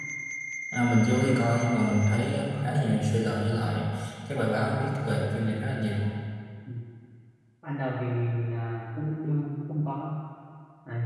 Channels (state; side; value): identical; both; correlation 1.00